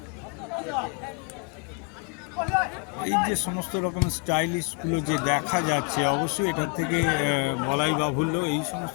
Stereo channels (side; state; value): right; quieter; 32.5 dB